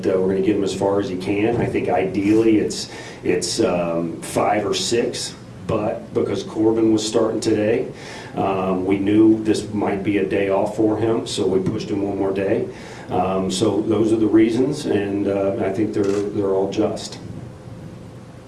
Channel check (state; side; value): identical; both; correlation 1.00